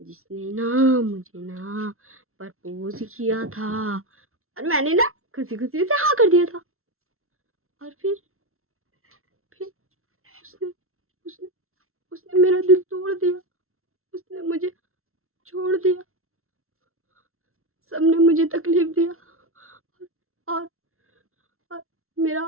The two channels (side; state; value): left; late; 0.62 ms